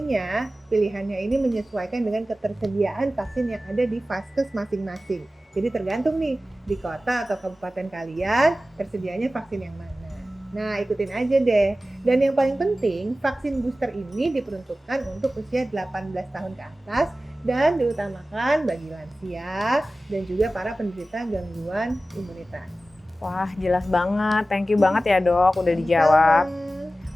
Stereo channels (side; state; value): both; normal; correlation 0.95